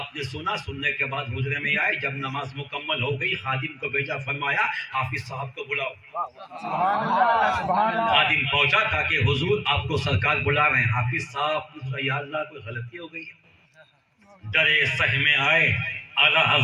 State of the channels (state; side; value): identical; both; correlation 1.00